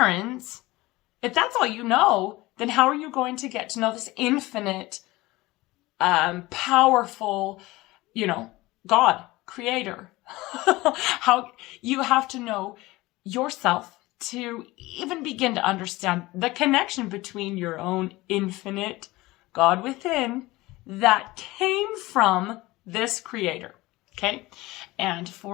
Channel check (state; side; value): quieter; right; 19.9 dB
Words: If that's all you know, then how are you going to get to know this infinite, powerful, God, creator? How you have to know yourself to even begin to understand the connection between your own infinite God within that came from this creator. Okay. And